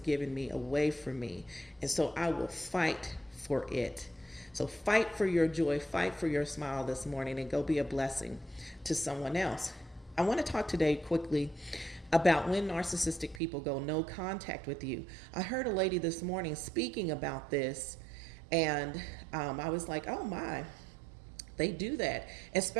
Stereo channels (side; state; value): left; drops out; at 13.4 s